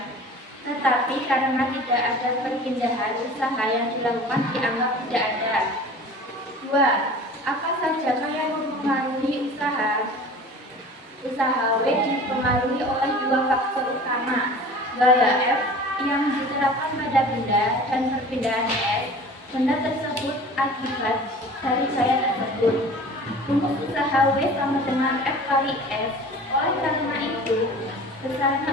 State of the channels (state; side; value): normal; both; correlation 0.41